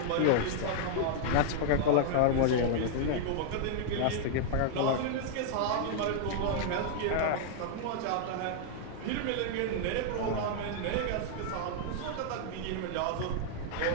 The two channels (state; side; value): different; both; correlation -0.01